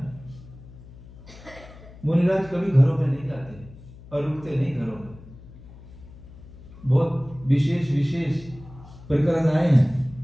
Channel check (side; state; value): left; noise; hum, 19 dB below the sound